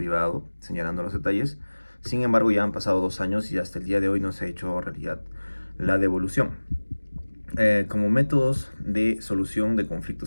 señalando los detalles. Sin embargo, ya han pasado 2 años y hasta el día de hoy no se ha hecho realidad la devolución. Como métodos de solución de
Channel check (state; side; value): inverted; both; correlation -1.00